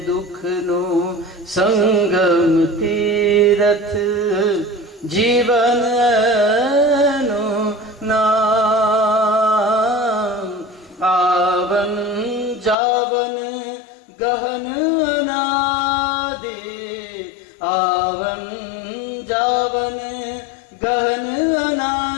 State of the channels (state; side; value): drops out; right; at 12.8 s